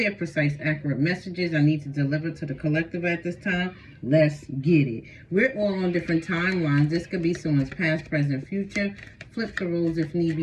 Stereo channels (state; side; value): identical; both; correlation 1.00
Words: precise, accurate messages I need to deliver to the collective at this time. Let's get it. We're all on different timelines. This could be someone's past, present, future. Flip the rules if need